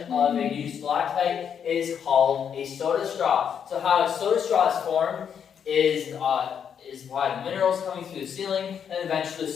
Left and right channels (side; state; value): right; quieter; 7.8 dB